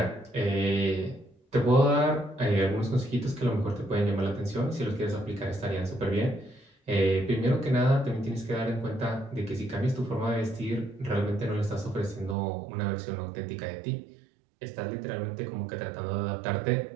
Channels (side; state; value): left; drops out; at 12.4 s